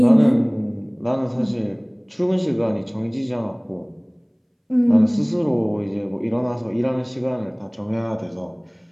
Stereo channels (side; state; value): both; identical; correlation 1.00